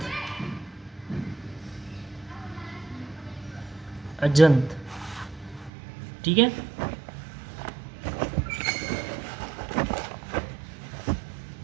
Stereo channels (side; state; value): left; drops out; at 5.7 s